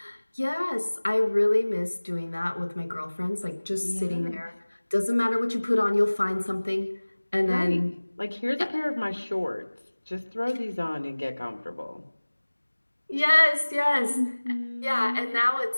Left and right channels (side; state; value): both; inverted; correlation -1.00